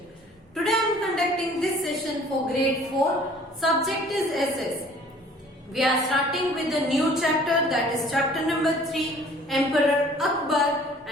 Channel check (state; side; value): normal; both; correlation 0.52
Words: Today I am conducting this session for grade 4. Subject is SS. We are starting with a new chapter, that is chapter number 3, Emperor Akbar,